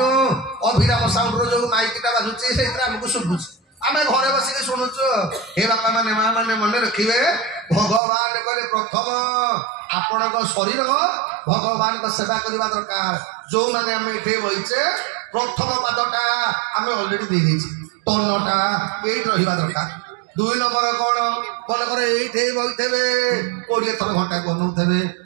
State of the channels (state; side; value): drops out; left; at 8.0 s